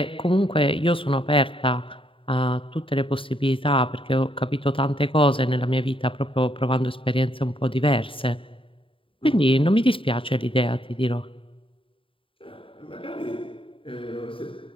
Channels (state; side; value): late; right; 0.25 ms